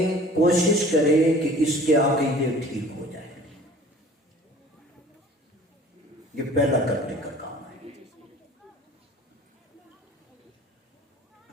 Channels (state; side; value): normal; both; correlation 0.48